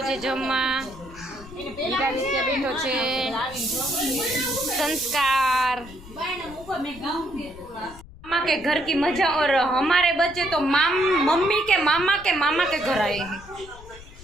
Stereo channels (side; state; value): left; noise; rumble, 18 dB below the sound